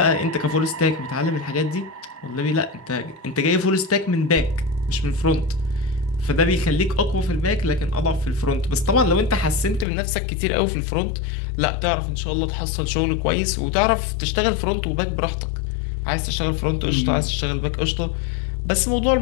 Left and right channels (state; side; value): drops out; right; at 9.9 s